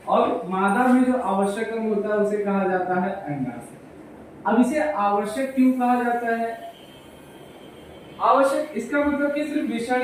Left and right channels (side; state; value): both; identical; correlation 1.00